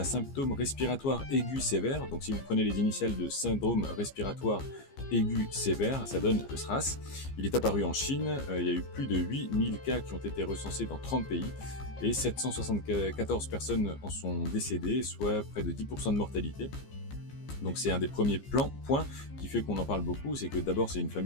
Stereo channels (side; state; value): right; late; 15 ms